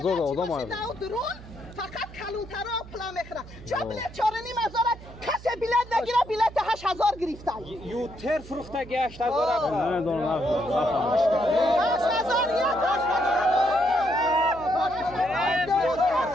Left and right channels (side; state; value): right; noise; hum, 17 dB below the sound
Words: آدم آید فقط کلونترها پلا میخوره چه بیلیت 4500 کسی بیلیت نگیره بیلیت 8000 گرفتن یوتر فروختگی 8000